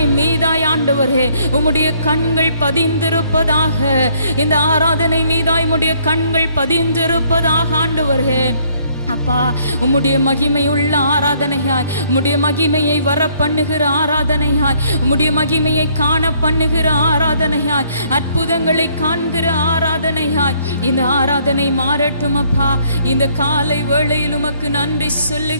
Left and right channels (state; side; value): inverted; both; correlation -0.65